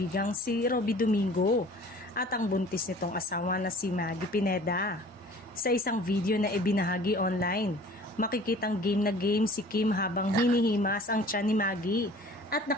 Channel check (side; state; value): both; normal; correlation 0.48